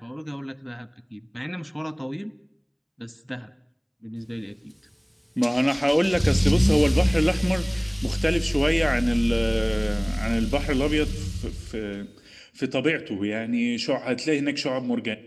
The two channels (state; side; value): identical; both; correlation 1.00